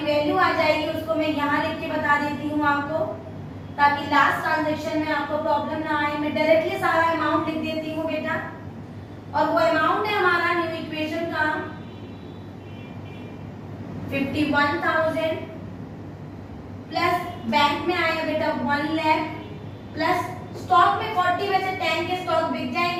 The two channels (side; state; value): both; identical; correlation 1.00